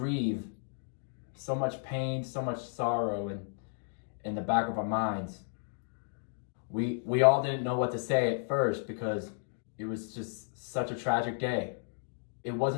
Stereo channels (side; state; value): right; silent; digital silence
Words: so much pain, so much sorrow in the back of our minds. we all didn't know what to say at first because it was just such a tragic day. It